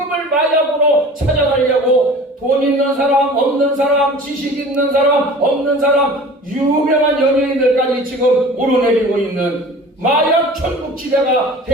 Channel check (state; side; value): normal; both; correlation 0.42